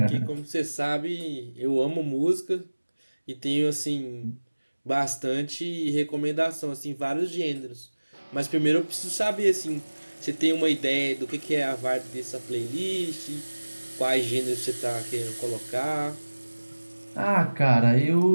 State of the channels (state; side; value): inverted; both; correlation -1.00